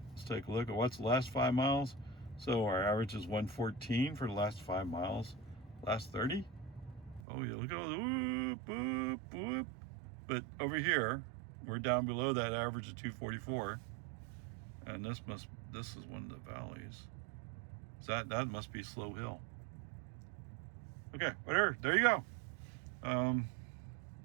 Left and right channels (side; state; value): left; drops out; at 7.2 s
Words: Let's take a look at what's the last 5 miles. So our average is 114 for the last 5 miles. Last 30, Oh, yeah, look at all the whoop, whoop, whoop. But over here, we're down below that average of 244. And this is one of the valleys. So that must be Slow Hill. Okay, whatever. There you go.